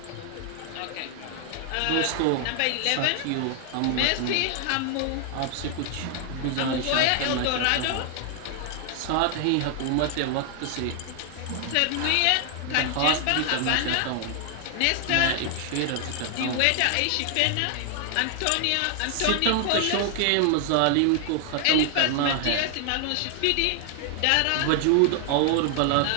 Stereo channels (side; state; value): both; different; correlation 0.00